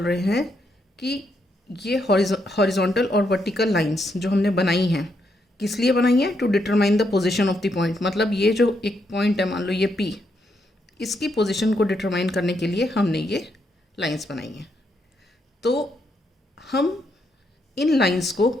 रहे हैं कि ये हॉरिजॉन्टल और वर्टिकल लाइंस जो हमने बनाई हैं किस लिए बनाई हैं, to determine the position of the point. मतलब ये जो एक पॉइंट है, मान लो ये पी, इसकी पोजीशन को डिटरमाइन करने के लिए हमने ये लाइंस बनाई हैं. तो हम इन लाइंस को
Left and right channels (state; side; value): normal; both; correlation 0.78